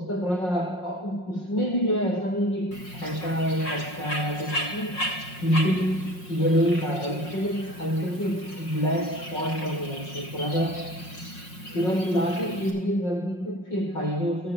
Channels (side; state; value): right; late; 5.5 ms